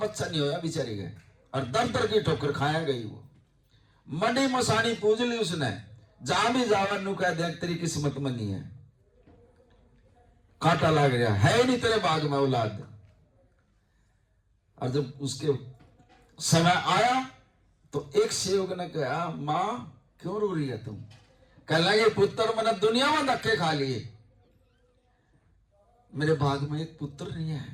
नहीं होया बेचारी गए, और दर दर की ठोकर खाया गई। वो मंडी मसानी पूज ली उसने, जहां भी जावा नु कह देख तेरी किस्मत में नहीं है, कांटा लग गया है नहीं तेरे बाग में औलाद। और जब उसके समय आया तो एक सेवक ने कहा, मां क्यों रो रही है तुम? कह लगे पुत्र मैंने दुनिया में धक्के खा लिए, मेरे भाग में एक पुत्र नहीं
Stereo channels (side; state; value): both; identical; correlation 1.00